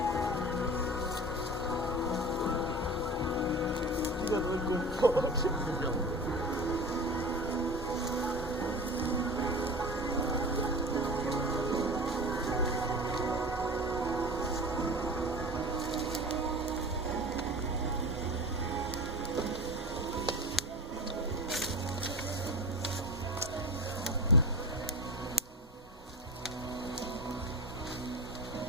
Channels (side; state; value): both; normal; correlation 0.32